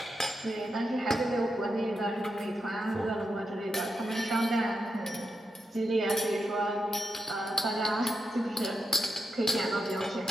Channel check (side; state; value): both; normal; correlation 0.86